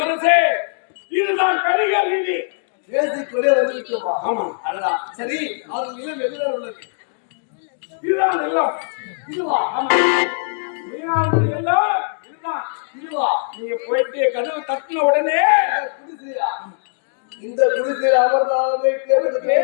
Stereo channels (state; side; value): silent; right; digital silence